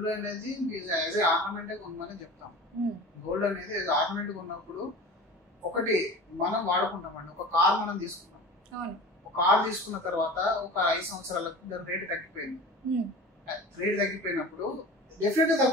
అనేది యాజ్ ఏ ఆర్నమెంటే కొనమని చెప్తాం. గోల్డ్ అనేది ఆర్నమెంట్ కొన్నప్పుడు ఒకటి మనం వాడుకుంటామండి. ఒక కార్ మనం తీసుకున్నాం, ఒక కార్ తీసుకున్న తర్వాత ఒక 5 సంవత్సరాలకు దాని రేటు తగ్గిపోయింది. రేటు తగ్గిపోయినప్పుడు డెఫినెట్ గా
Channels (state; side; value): normal; both; correlation 0.37